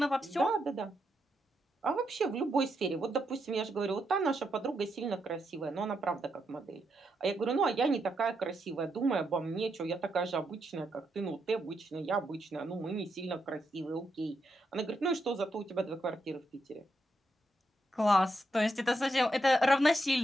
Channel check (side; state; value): both; normal; correlation 0.82